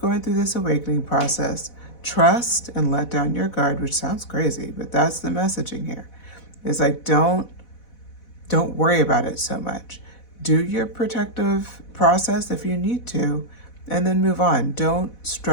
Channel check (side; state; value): right; late; 4.1 ms